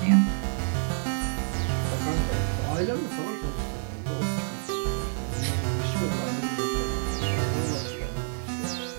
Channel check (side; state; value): left; silent; 59 dB below the other